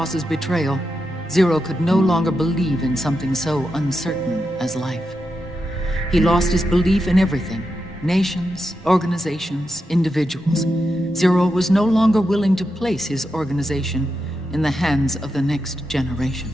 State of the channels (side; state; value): both; normal; correlation 0.87